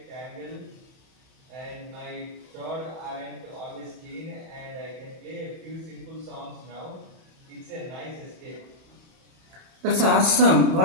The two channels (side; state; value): left; late; 31 ms